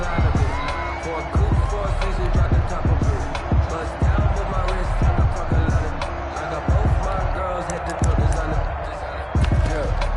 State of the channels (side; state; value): both; identical; correlation 1.00